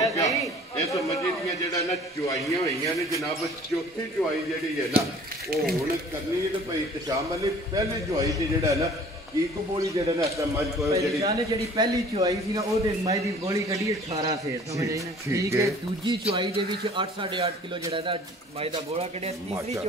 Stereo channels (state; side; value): normal; both; correlation 0.50